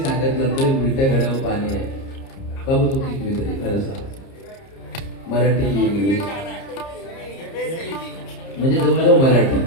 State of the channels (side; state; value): right; late; 30 ms